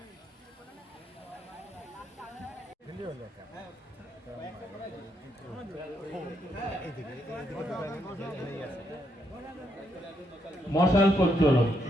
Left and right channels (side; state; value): both; normal; correlation 0.77